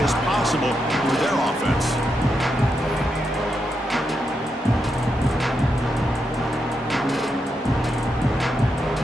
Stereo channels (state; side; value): normal; both; correlation 0.84